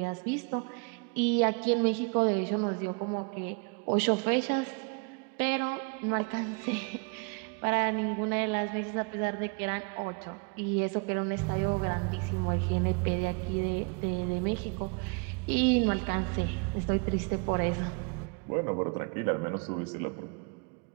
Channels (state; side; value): quieter; left; 33.9 dB